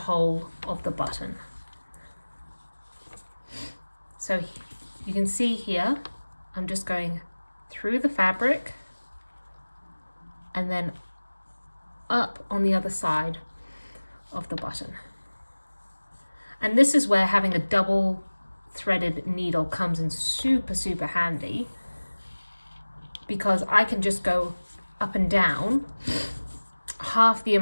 of the button. So you can see here, I'm just going through the fabric and then up on the other side of the button. And this is where having a double threaded needle comes in super handy, because I can just go up and down half the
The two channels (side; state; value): both; inverted; correlation -1.00